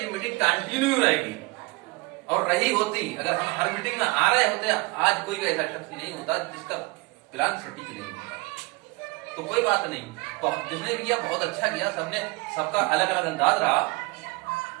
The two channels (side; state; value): left; quieter; 26.1 dB